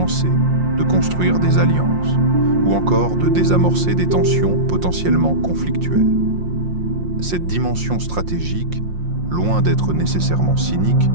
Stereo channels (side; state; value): left; late; 5.6 ms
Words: de construire des alliances, ou encore de désamorcer des tensions potentiellement conflictuelles. Cette dimension stratégique, loin d'être nécessairement cynique,